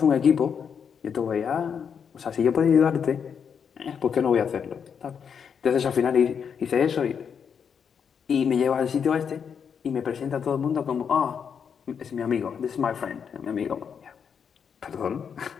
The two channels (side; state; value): right; quieter; 7.1 dB